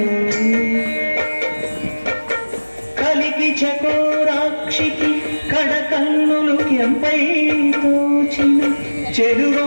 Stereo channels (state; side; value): inverted; both; correlation -1.00